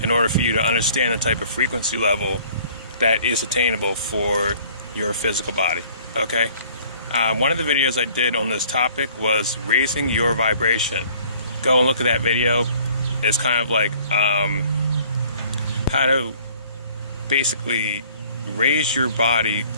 in order for you to understand the type of frequency level that is attainable for your physical body. Okay? One of the videos I did on this topic was raising your vibration. Go and look at that video. It's kind of like how to basically raise your body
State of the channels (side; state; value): both; inverted; correlation -0.55